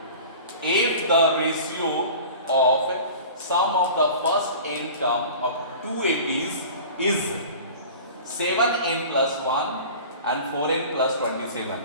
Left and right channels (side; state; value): both; inverted; correlation -0.39